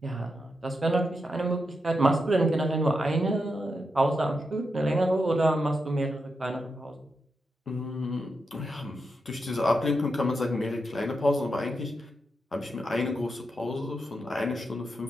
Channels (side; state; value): both; normal; correlation 0.86